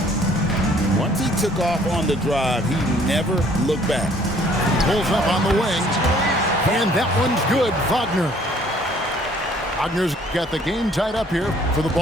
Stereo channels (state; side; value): normal; both; correlation 0.59